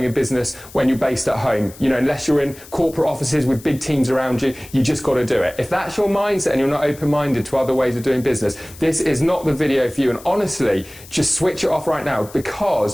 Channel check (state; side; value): noise; left; hiss, 20 dB below the sound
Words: a business when you're based at home. Unless you're in corporate offices with big teams around you, you just got to do it. If that's your mindset and you're not open-minded to other ways of doing business, this is not the video for you. And honestly, just switch it off right now,